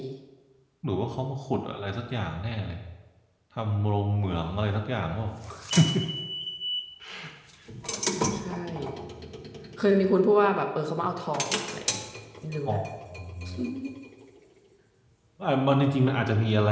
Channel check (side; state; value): both; identical; correlation 1.00